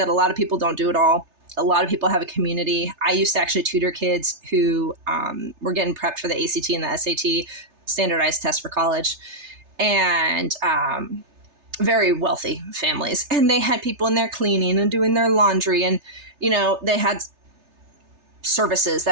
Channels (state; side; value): late; left; 3.3 ms